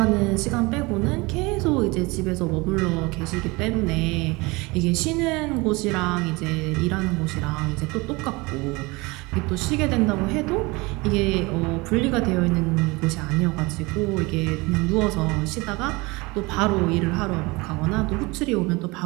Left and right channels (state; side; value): quieter; left; 24.5 dB